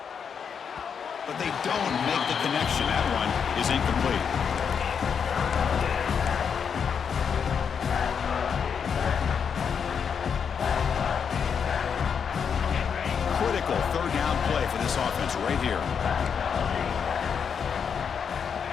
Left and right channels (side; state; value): right; quieter; 6.9 dB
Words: But they don't make the connection. That one is incomplete. Critical third down play for this offense right here.